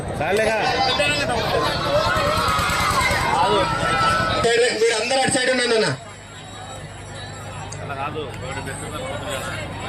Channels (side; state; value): both; identical; correlation 1.00